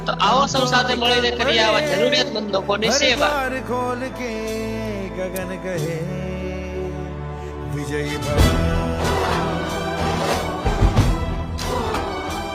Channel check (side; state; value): both; identical; correlation 1.00